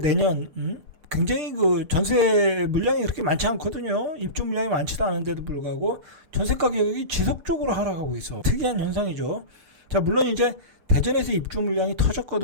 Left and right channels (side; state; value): left; late; 6.7 ms